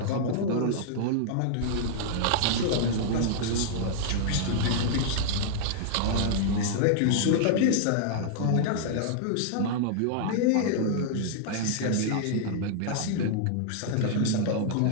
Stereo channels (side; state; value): both; different; correlation -0.01